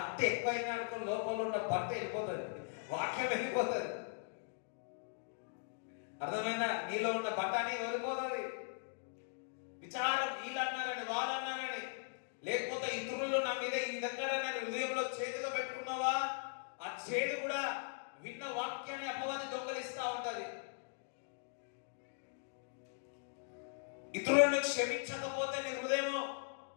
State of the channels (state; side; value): silent; right; digital silence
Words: ఎక్కువైనా అనుకో లోపల ఉన్న బట్ట వెళ్ళిపోతుంది, వాక్యం వెళ్ళిపోతుంది. అర్థమైనా? నీలో ఉన్న బట్టాని వెళ్ళిపోతుంది. విచారం వీళ్ళు అన్నారని వాళ్ళు అన్నారని, లేకపోతే ఇతరులు నా మీద ఈ విధంగా హృదయంలో చేతుగా పెట్టుకున్నావా, ఆ చేదు కూడా విన్న వాక్యాన్ని అపవాది దొంగలిస్తా ఉంటది. ఇతరులను క్షమించకపోతే నీ హృదయము